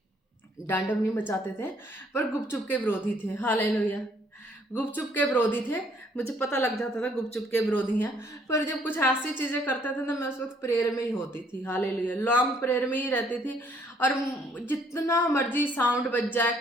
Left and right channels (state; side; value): normal; both; correlation 0.65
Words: डांडम नहीं मचाते थे पर गुपचुप के विरोधी थे, हालेलुया। गुपचुप के विरोधी थे, मुझे पता लग जाता था गुपचुप के विरोधी हैं। पर जब कुछ ऐसी चीजें करते थे ना, मैं उस वक्त प्रेयर में ही होती थी, हालेलुया, लॉन्ग प्रेयर में ही रहती थी। और जितना मर्जी साउंड बज जाए,